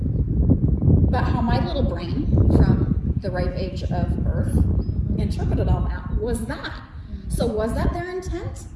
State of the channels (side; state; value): both; identical; correlation 1.00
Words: But how my little brain, from the ripe age of birth, interpreted all that was that. So was that their intent?